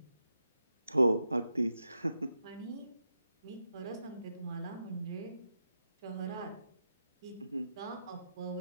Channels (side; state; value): both; inverted; correlation -0.86